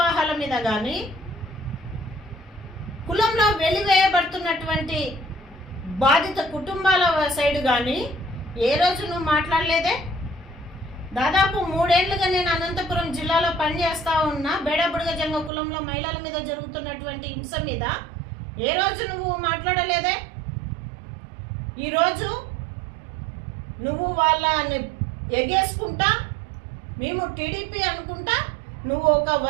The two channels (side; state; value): left; drops out; at 15.5 s